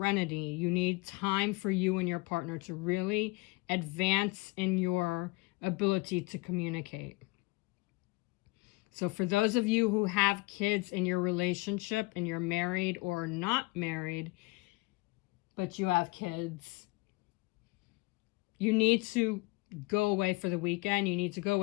You need time for you and your partner to really advance in your ability to communicate. So for those of you who have kids in your relationship and you're married or not married, but you have kids, you need to go away for the weekend. You need to go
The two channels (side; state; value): right; quieter; 24.7 dB